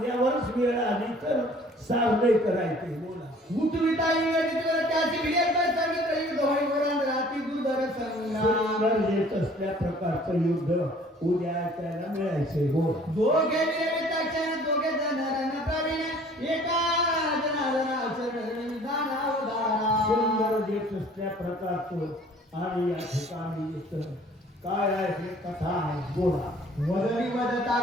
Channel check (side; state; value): both; normal; correlation 0.53